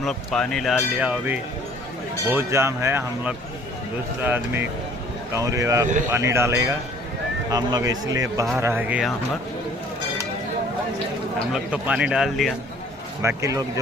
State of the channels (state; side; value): normal; both; correlation 0.55